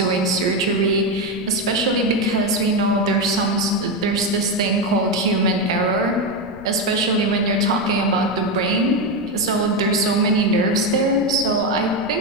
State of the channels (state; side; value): noise; left; rumble, 21 dB below the sound